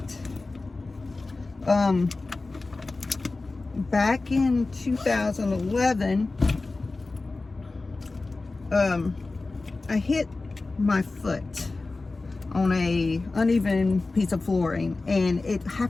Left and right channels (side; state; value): right; quieter; 3.5 dB